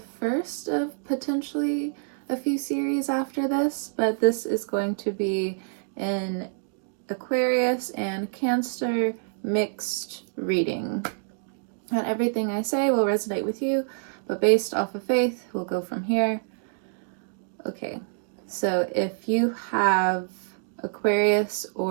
first of potentially a few series after this, but this is going to be an Aquarius and Cancer mixed reading. Not everything I say will resonate with you, but based off of faith, we'll go from here. Okay, so if you have Aquarius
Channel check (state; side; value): silent; left; digital silence